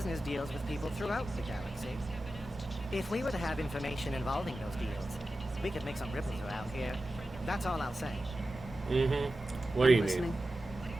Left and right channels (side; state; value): both; normal; correlation 0.93